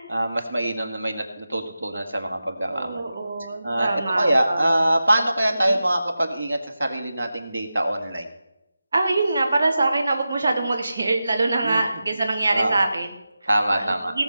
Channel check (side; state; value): both; inverted; correlation -0.92